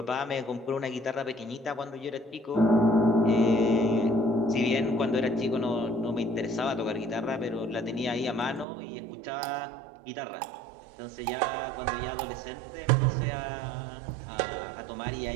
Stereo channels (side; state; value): left; drops out; at 8.7 s